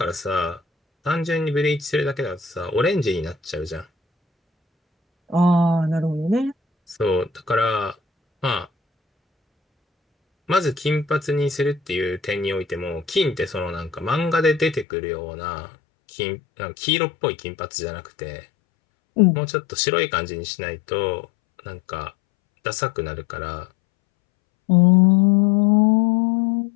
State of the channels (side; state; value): right; drops out; at 14.9 s